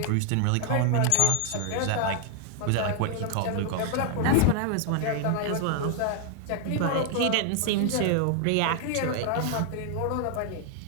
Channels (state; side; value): different; both; correlation 0.00